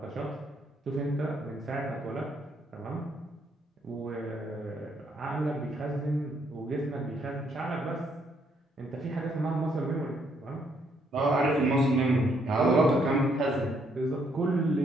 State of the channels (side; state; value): both; normal; correlation 0.71